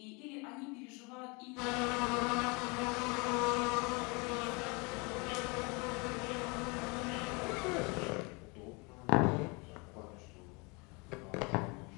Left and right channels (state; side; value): quieter; right; 29.3 dB